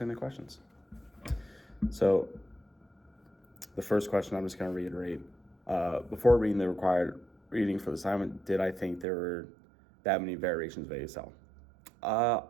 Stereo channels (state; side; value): drops out; left; at 9.1 s